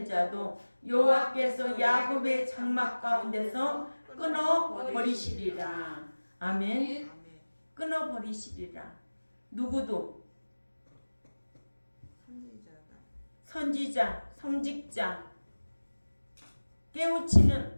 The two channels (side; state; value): both; inverted; correlation -1.00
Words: 자도 여호와께서 야곱의 장막 가운데서 끊어 버리시리라. 아멘. 끊어 버리시리라. 누구도 선지자, 성직자,